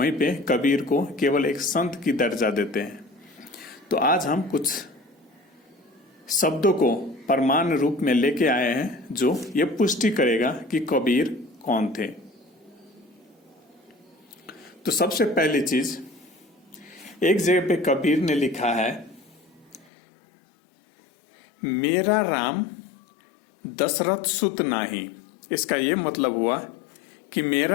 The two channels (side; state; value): right; drops out; at 19.9 s